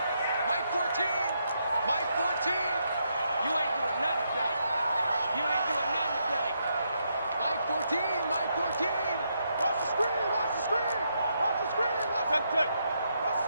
Mike 14. Mike 14. You ain't doing nothing today. You ain't doing nothing today. Mike 14. Mike 14. Watch the screen. Watch the screen. Watch the screen. Watch the screen. Watch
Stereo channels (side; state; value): both; inverted; correlation -0.79